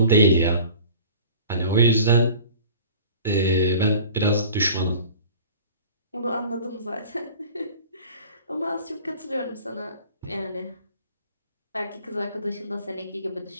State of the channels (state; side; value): inverted; both; correlation -0.44